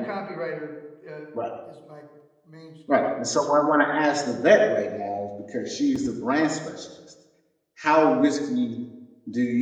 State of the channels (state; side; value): identical; both; correlation 1.00